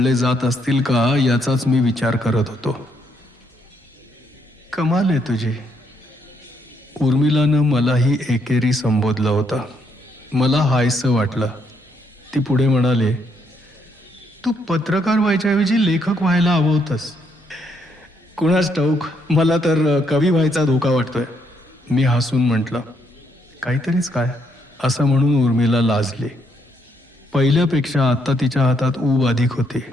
जात असतील का याचाच मी विचार करत होतो. कमाल आहे तुझी. उर्मिलानं मलाही एकेरी संबोधलं होतं. मला हायसं वाटलं. ती पुढे म्हणाले, तू पत्रकार व्हायच्याऐवजी लेखक व्हायला हवं होतंस. कुणास ठाऊक, मला तर कवी व्हायचा धोका वाटतोय. मी हसून म्हटलं, काहीतरीच काय असं म्हणून उर्मिला लाजली. पहिल्यापेक्षा आत्ता तिच्या हातात ऊब अधिक होती.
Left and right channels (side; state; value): both; normal; correlation 0.73